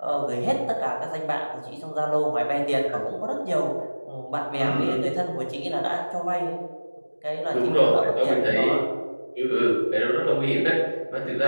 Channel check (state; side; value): inverted; both; correlation -1.00